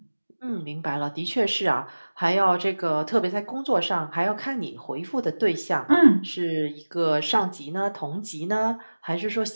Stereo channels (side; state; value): both; inverted; correlation -1.00